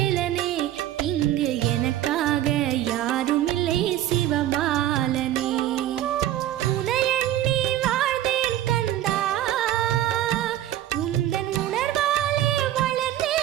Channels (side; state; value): left; quieter; 13.1 dB